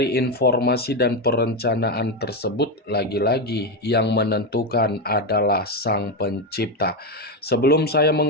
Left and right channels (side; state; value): both; normal; correlation 0.10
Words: informasi dan perencanaan tersebut, lagi-lagi yang menentukan adalah Sang Pencipta. Sebelum saya